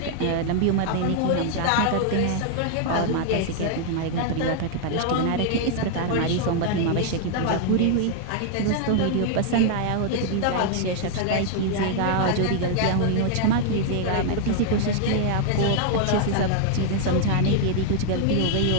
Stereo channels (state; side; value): different; both; correlation 0.00